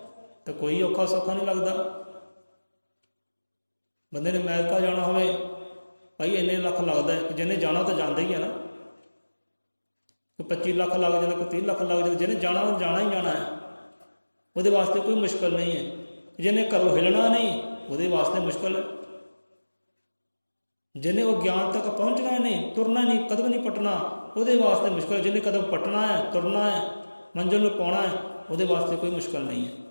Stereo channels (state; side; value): inverted; both; correlation -1.00